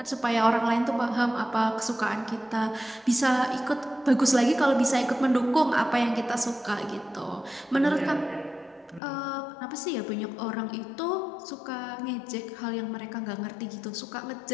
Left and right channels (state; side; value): drops out; right; at 9.0 s